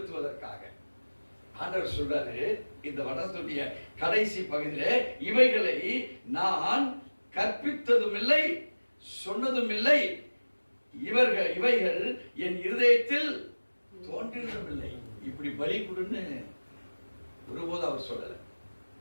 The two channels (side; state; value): both; inverted; correlation -1.00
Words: ஆண்டவர் சொல்றாரு இந்த வடத்துடைய கடைசி பகுதியிலே, இவைகளை நான் கற்பித்ததும் இல்லை, சொன்னதும் இல்லை. இவைகள் என் இருதயத்தில் தோன்றினதும் இல்லை. இப்படி பலி கொடுன்னு ஒருபோது அவர் சொல்லல.